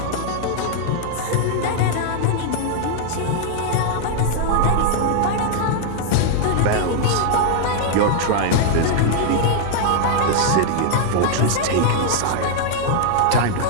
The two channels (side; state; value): both; different; correlation 0.00